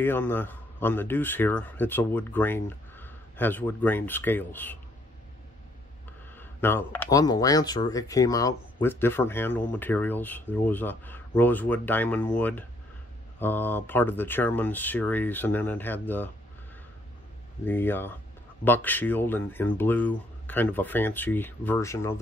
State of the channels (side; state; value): both; normal; correlation 0.68